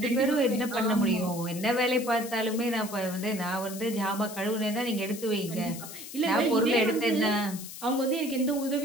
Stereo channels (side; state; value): left; noise; hiss, 12 dB below the sound